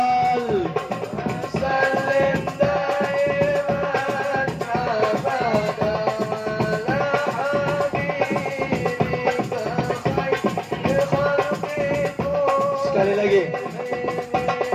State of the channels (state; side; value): identical; both; correlation 1.00